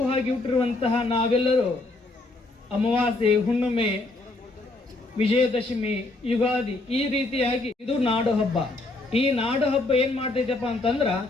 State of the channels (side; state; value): right; quieter; 3.1 dB